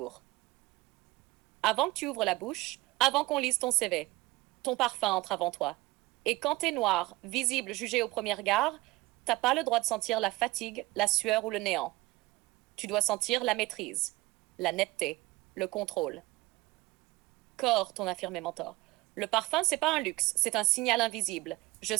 Avant que tu ouvres la bouche, avant qu'on lise ton CV, ton parfum entre avant toi. Et quand t'es noir, visible, jugé au premier regard, t'as pas le droit de sentir la fatigue, la sueur ou le néant. Tu dois sentir la maîtrise, la netteté, le contrôle. Corps, ton affirmé mentor. Le parfum, c'est pas un luxe, c'est un signal invisible. Je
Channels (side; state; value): left; quieter; 20.2 dB